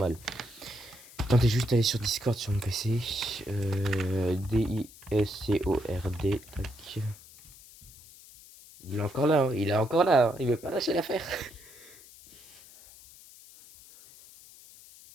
Tentez juste d'aller sur Discord sur mon PC. D-I-S-C-O-R-D. Tac. Il est encore là, hein. Il est encore là, hein. Il veut pas lâcher l'affaire.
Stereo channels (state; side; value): noise; left; hiss, 21 dB below the sound